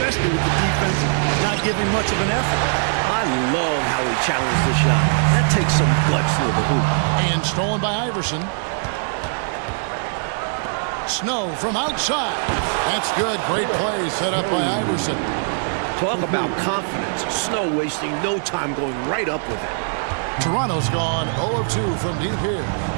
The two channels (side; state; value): left; silent; digital silence